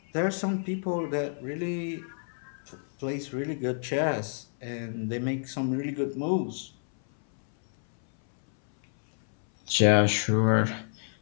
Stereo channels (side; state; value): right; silent; 59 dB below the other